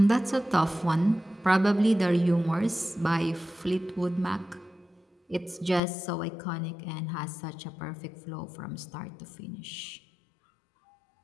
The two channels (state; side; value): drops out; right; at 5.8 s